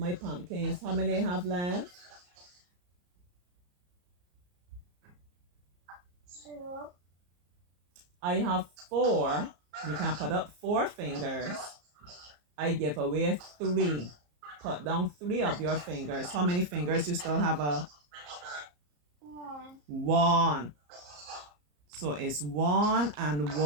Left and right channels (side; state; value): left; late; 34 ms